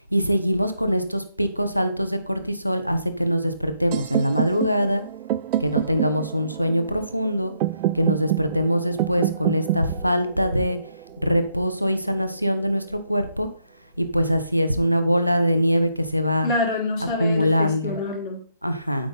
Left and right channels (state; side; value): inverted; both; correlation -0.76